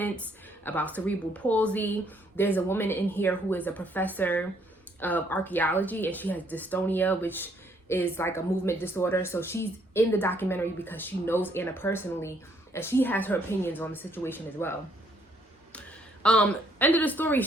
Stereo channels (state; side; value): normal; both; correlation 0.68